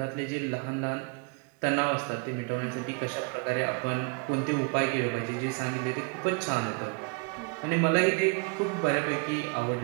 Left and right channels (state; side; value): quieter; left; 32.8 dB